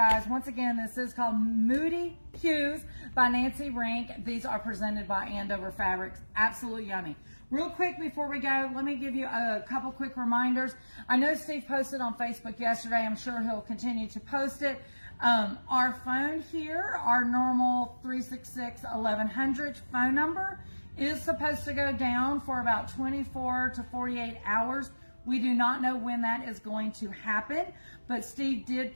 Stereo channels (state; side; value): inverted; both; correlation -1.00